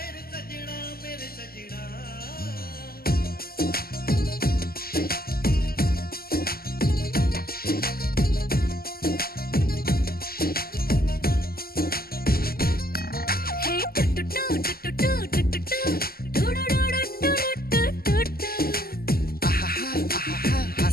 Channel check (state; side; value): late; right; 0.44 ms